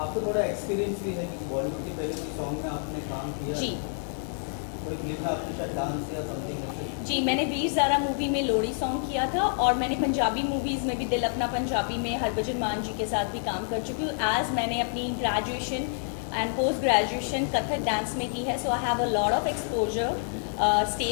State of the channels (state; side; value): silent; right; digital silence